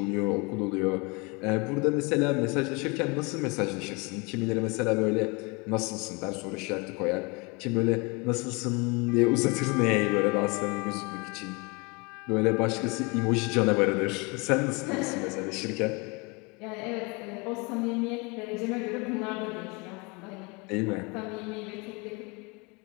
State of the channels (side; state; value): right; quieter; 28.8 dB